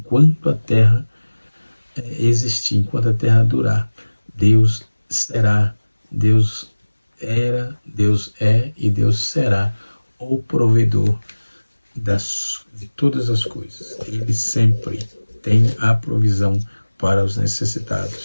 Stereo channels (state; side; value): inverted; both; correlation -1.00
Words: a terra existir, enquanto a terra durar, Deus será, Deus era, Deus é e Deus será o provedor de todas as coisas. Ele sempre tem a provisão para os